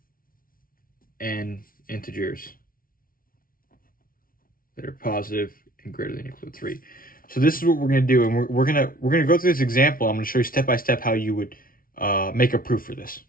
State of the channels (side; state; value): right; late; 0.42 ms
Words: n integers that are positive and greater than or equal to 3. So this is what we're going to do, and we're going to go through this example. I'm going to show you step by step how you would make a proof for this.